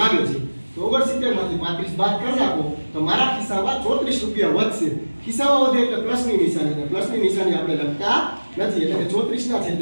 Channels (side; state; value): both; inverted; correlation -1.00